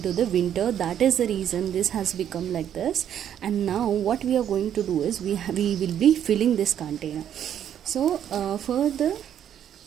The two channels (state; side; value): quieter; left; 9.8 dB